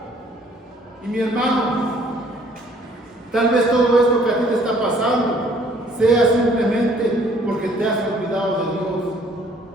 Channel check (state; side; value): normal; both; correlation 0.59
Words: Y mi hermano, tal vez todo esto que a ti te está pasando sea simplemente porque te has olvidado de Dios,